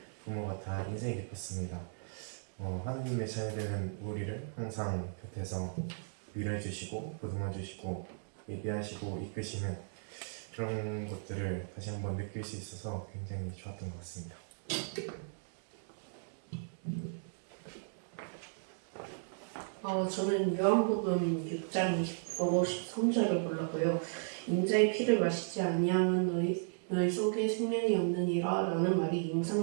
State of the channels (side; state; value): left; silent; digital silence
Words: 부모 같아 인생이 깊었습니다. 하나님의 자녀되는 우리를 항상 곁에서 위로해주시고 보듬어주시고 예비하시고 이끄시는 그런 것들을 다시 한번 느낄 수 있어서 굉장히 좋았던 것 같습니다. 저는 요한복음 6장 20절 13절을 골랐고요. 인자의 피를 마시지 아니하면 너희 속에 생명이 없느니라 라는 말이